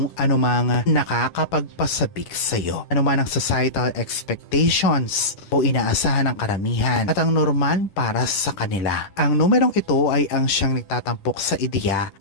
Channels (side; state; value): right; late; 10 ms